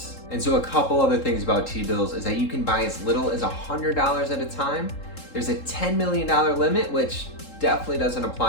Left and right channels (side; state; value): right; late; 3.7 ms